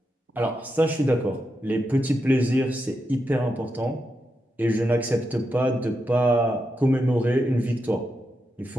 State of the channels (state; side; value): normal; both; correlation 0.86